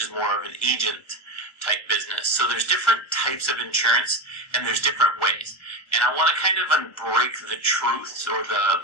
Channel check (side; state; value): right; late; 1.4 ms